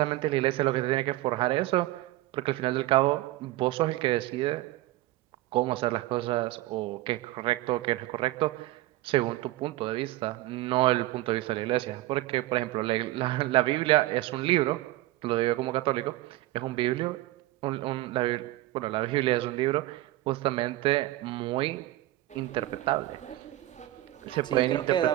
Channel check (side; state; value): left; quieter; 17.0 dB